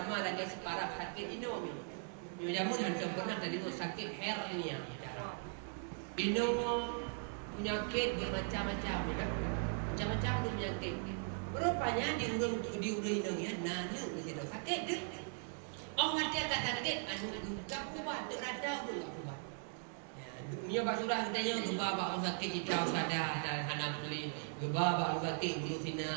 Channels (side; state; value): left; silent; 52 dB below the other